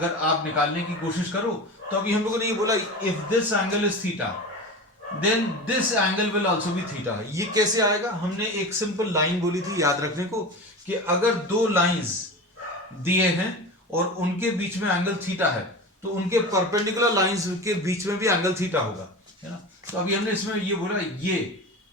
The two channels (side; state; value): both; normal; correlation 0.29